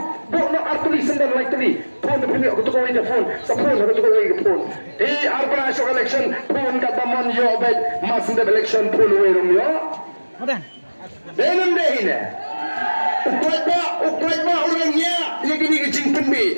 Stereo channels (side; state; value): both; inverted; correlation -1.00